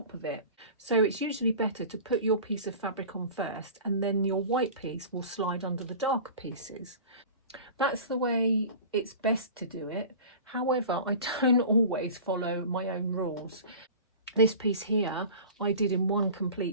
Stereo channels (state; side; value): inverted; both; correlation -0.38